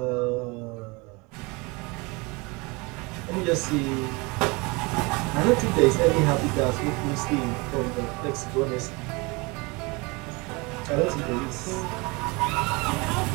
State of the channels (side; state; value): left; quieter; 26.8 dB